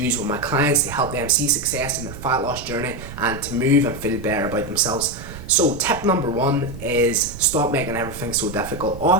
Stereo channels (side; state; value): right; noise; rumble, 12 dB below the sound